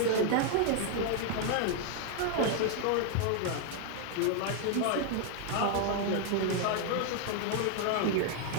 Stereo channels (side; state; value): both; different; correlation 0.00